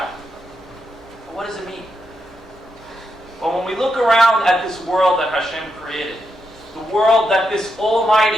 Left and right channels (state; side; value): normal; both; correlation 0.83